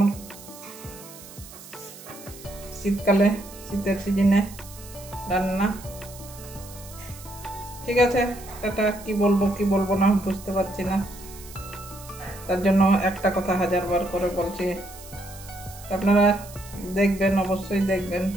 শীতকালে, শীতের সিজনে রান্না। ঠিক আছে, টাটা। কি বলবো না বুঝতে পারছি না, তার জন্য একটা কথা 1000বার করে বলছি। আপনারা দেখবেন, অবশ্যই দেখবেন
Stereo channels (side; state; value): right; noise; hiss, 17 dB below the sound